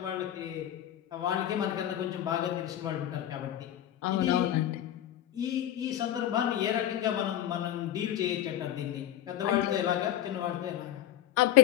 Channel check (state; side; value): quieter; right; 12.1 dB